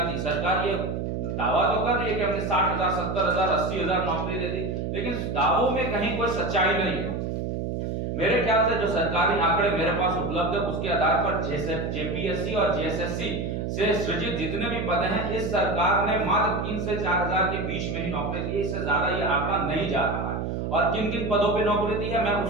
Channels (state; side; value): noise; right; hum, 2 dB below the sound